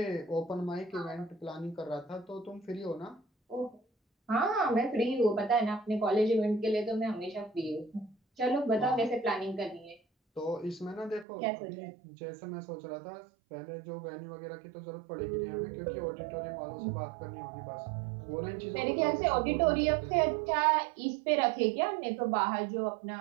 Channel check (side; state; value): left; drops out; at 11.2 s